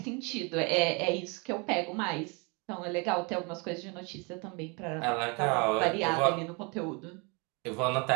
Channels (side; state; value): left; quieter; 31.1 dB